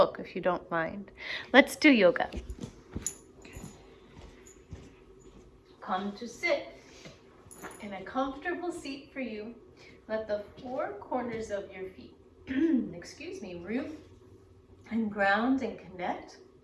if you don't mind. Let's do yoga. Come to sit in a comfortable seat for you. Let the four corners of your feet, root and ground and connect.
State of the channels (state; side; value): identical; both; correlation 1.00